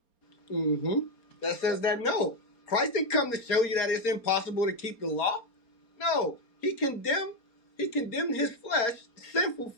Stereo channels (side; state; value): right; late; 4.3 ms